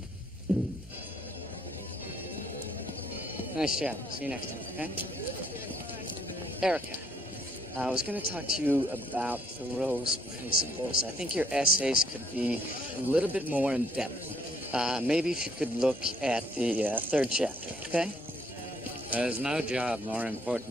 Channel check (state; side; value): normal; both; correlation 0.67